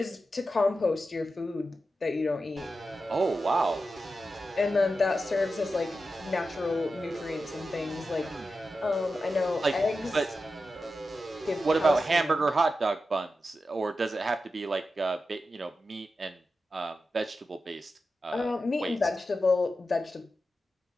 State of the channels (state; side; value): normal; both; correlation 0.91